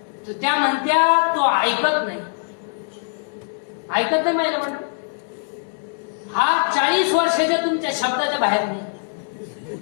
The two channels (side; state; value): right; silent; digital silence